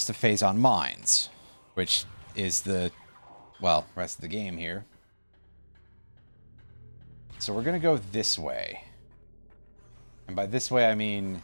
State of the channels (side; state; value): both; inverted; correlation -1.00